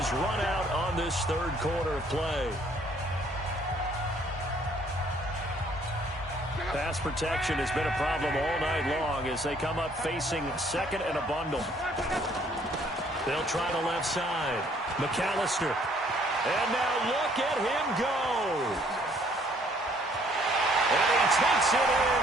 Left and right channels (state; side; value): normal; both; correlation 0.62